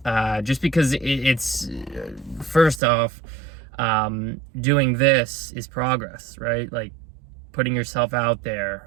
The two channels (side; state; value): left; drops out; at 2.8 s